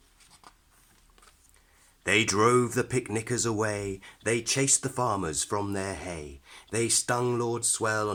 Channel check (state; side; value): identical; both; correlation 1.00